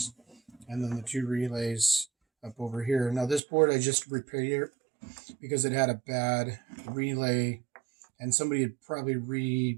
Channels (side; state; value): left; drops out; at 3.4 s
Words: and then the two relays up over here. Now this board I just repaired because it had a bad relay, and somebody had probably